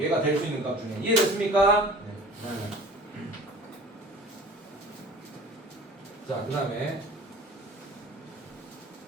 될 수 있는 값 중에. 이해됐습니까? 네. 자, 그 다음에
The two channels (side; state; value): both; normal; correlation 0.45